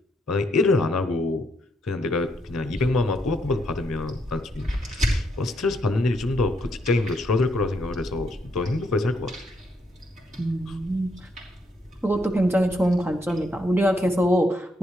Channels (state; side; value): normal; both; correlation 0.75